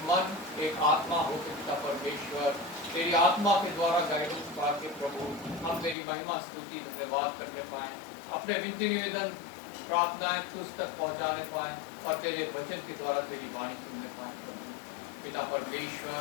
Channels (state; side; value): drops out; right; at 6.0 s